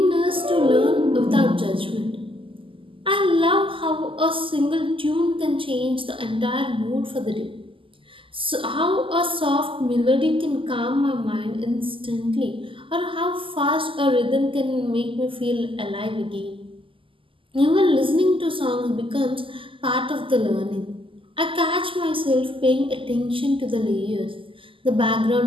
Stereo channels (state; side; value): late; left; 0.25 ms